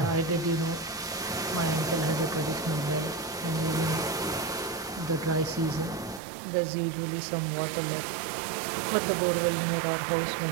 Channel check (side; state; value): left; drops out; at 6.2 s